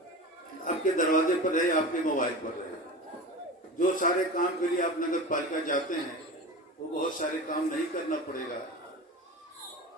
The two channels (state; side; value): normal; both; correlation 0.30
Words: आपके दरवाजे पर रहे, आपके मोबाइल पर रहे। जो सारे काम के लिए आप नगर पालिका जाते हैं वो बहुत सारे काम नहीं करना पड़ेगा,